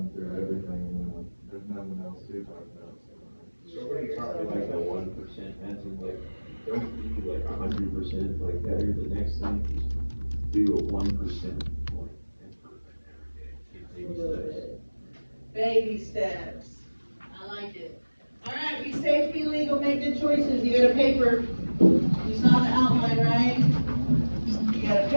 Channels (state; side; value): inverted; both; correlation -1.00